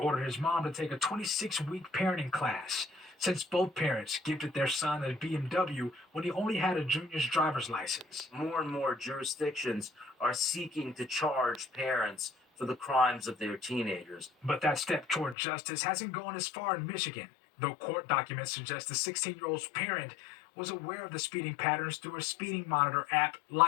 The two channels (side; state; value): right; drops out; at 15.4 s